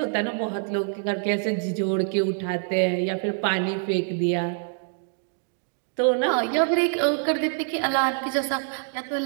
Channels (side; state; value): left; silent; 61 dB below the other